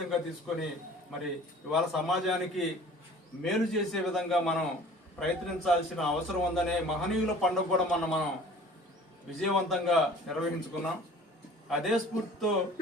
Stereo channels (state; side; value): normal; both; correlation 0.47